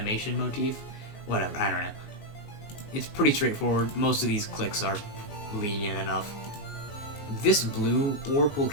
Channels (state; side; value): late; right; 19 ms